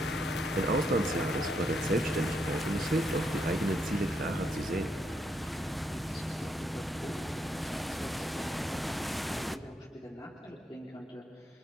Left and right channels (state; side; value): normal; both; correlation 0.77